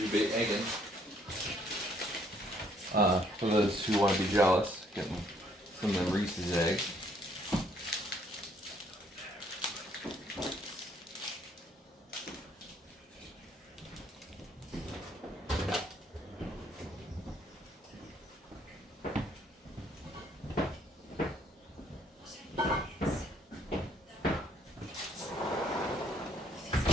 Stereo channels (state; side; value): normal; both; correlation 0.66